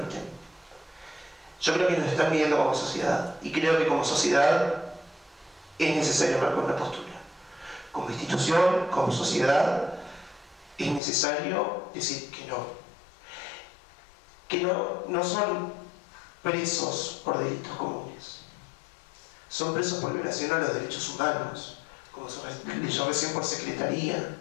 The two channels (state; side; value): drops out; right; at 11.0 s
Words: Yo creo que nos están midiendo como sociedad. Y creo que como sociedad es necesario marcar una postura. Como institución, como sociedad, es necesario decir que no. Que no son presos por delitos comunes. Son presos por violación a los derechos humanos, como se leyó recién, por secretaría,